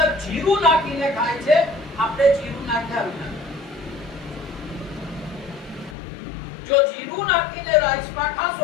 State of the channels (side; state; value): right; drops out; at 6.0 s